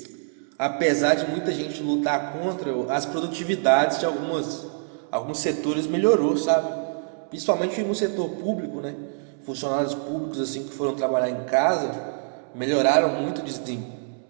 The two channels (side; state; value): left; silent; 62 dB below the other